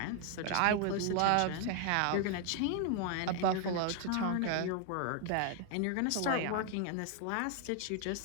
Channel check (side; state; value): both; different; correlation 0.00